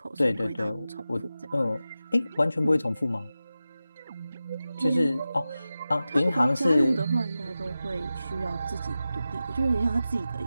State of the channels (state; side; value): inverted; both; correlation -0.94